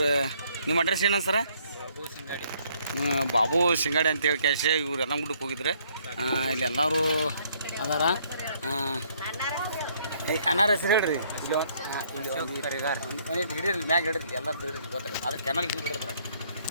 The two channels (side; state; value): both; inverted; correlation -0.66